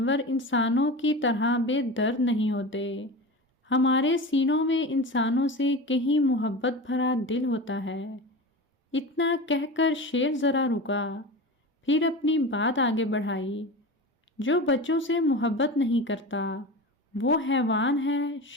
انسانوں کی طرح بے درد نہیں ہوتے، ہمارے سینوں میں انسانوں سے کہیں محبت بھرا دل ہوتا ہے۔ اتنا کہہ کر شیر ذرا رکا، پھر اپنی بات آگے بڑھائی، جو بچوں سے محبت نہیں کرتا وہ حیوان ہے،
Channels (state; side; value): normal; both; correlation 0.29